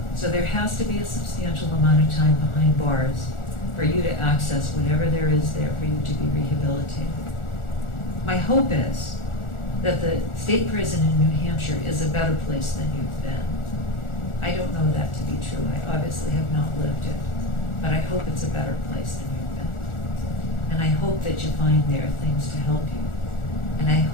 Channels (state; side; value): late; right; 1.4 ms